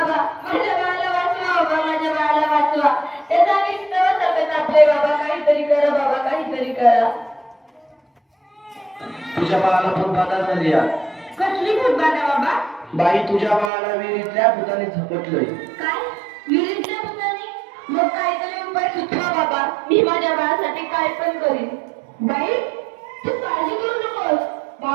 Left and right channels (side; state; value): left; drops out; at 13.7 s